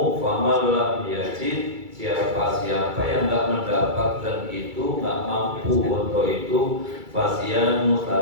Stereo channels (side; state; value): left; late; 2.3 ms